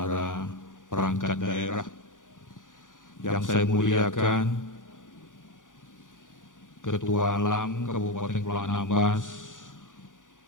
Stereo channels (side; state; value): right; late; 0.88 ms